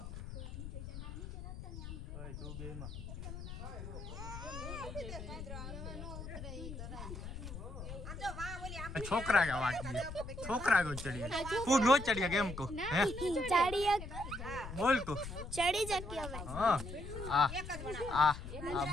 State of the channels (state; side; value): noise; left; rumble, 9 dB below the sound